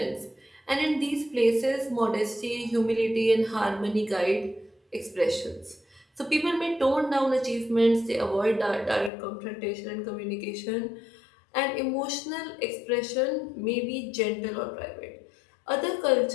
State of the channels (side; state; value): right; drops out; at 9.1 s